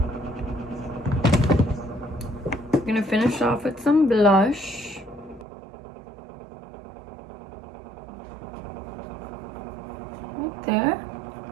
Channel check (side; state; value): left; drops out; at 5.5 s